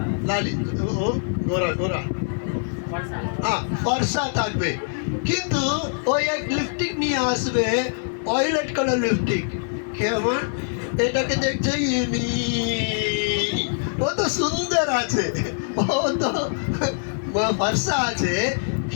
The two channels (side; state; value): right; silent; 63 dB below the other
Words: লালি, ও গোরা গোরা, হ্যাঁ ফর্সা থাকবে, কিন্তু ওই এক লিপস্টিক নিয়ে আসবে ওয়াইলেট কালার লিপস্টিক, কেমন এটাকে দেখছে ও তো সুন্দর আছে, ও তো ফর্সা আছে,